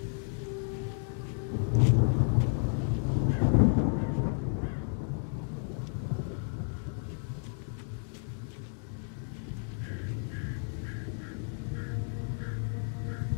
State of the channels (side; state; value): right; silent; 57 dB below the other